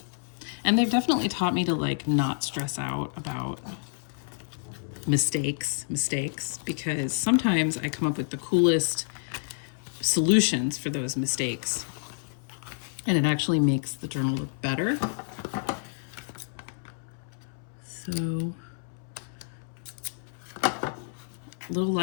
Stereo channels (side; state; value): right; silent; 59 dB below the other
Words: And they've definitely taught me to like not stress out about mistakes, because sometimes I come up with the coolest solutions for those mistakes. And it actually makes the journal look better. So, little